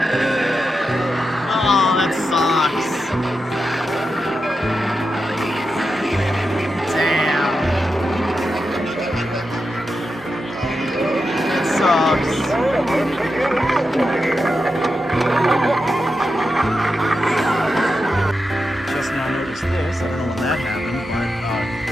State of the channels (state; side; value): normal; both; correlation 0.88